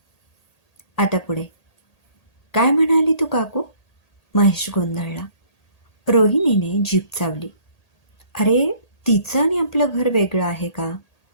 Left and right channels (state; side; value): late; right; 1.8 ms